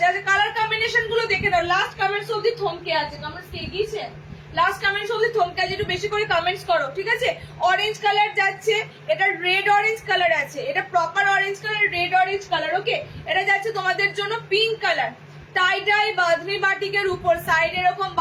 আচ্ছা কালার কম্বিনেশন গুলো দেখে দাও, লাস্ট কমেন্টস অবধি থমকে আছে, কমেন্টস কে গিয়েছে, লাস্ট কমেন্টস অবধি থমকে আছে, একটু বেশি করে কমেন্টস করো, ঠিক আছে। অরেঞ্জ কালার যাচ্ছে, এটা রেড অরেঞ্জ কালার আছে, এটা proper orange colour, red orange colour. Okay, এটা যাচ্ছে তোমাদের জন্য pink colour, tie dye bandhani বাটিকের উপর সাইড এরকম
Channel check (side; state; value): both; identical; correlation 1.00